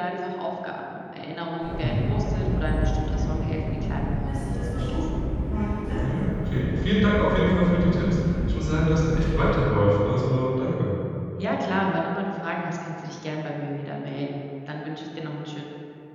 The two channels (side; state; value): both; identical; correlation 1.00